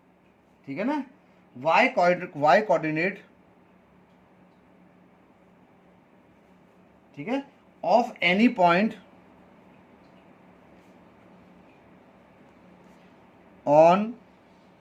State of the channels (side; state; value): both; identical; correlation 1.00